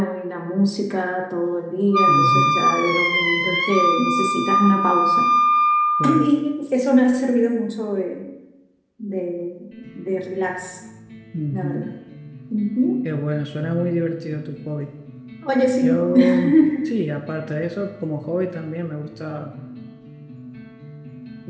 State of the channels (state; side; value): identical; both; correlation 1.00